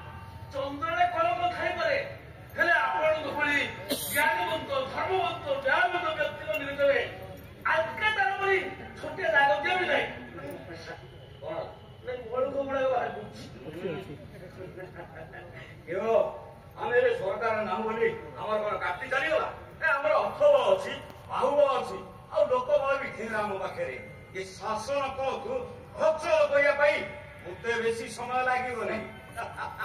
ଚନ୍ଦ୍ରରେ କଲମ ଖାଇପାରେ ହେଲେ ଆପଣଙ୍କ ଭଳି ଜ୍ଞାନବନ୍ତ ଧର୍ମବନ୍ତ ନ୍ୟାୟବନ୍ତ ବ୍ୟକ୍ତିଙ୍କ ନିକଟରେ ଆଜକା ତାର ଭଳି ଛୋଟିଆ ଦାଗ ଦିଅ ବି ନାହିଁ କଣ ବଳୁକୁ ଗୁଡ଼ାକ ବାହାର କରୁଛି ଆମେ ଏବେ ସରକାର ନାମ ବୋଲି ଆମର କଣ କାଟି ଚାଲିଗଲା ଆମର ଅର୍ଥବ ଅଛି ବାହୁବ ଅଛି ଆଉ ଲୋକବଳ ବି ଥିଲା ଆମ ପାଖରେ ଏ ଶାସନ କଳକୁ ଅଚଳ କରିବା ପାଇଁ ମତେ ବେଶୀ ସମୟ ଲାଗିବ ନାହିଁ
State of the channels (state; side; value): identical; both; correlation 1.00